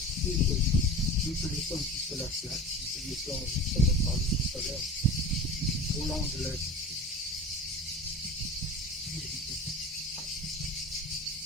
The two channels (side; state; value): both; normal; correlation 0.35